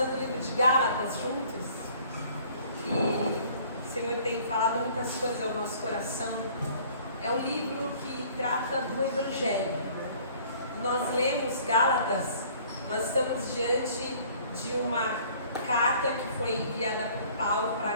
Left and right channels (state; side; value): inverted; both; correlation -0.55